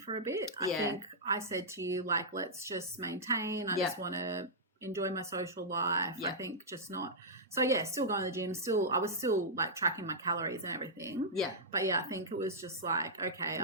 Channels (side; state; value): both; normal; correlation -0.10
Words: a bit. I think I said to you, like, let's just maintain. I just want to enjoy my social life. I think just not. So still going to the gym. I was still like tracking my calories and everything. Yeah. But I think it was just like, okay,